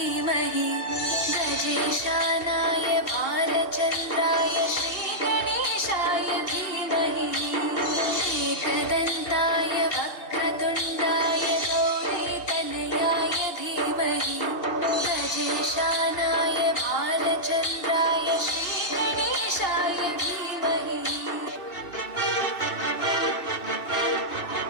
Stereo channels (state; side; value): late; right; 2.7 ms